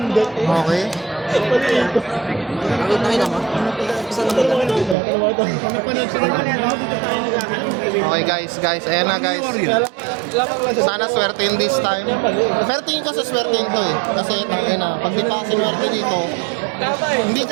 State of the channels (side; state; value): left; drops out; at 5.0 s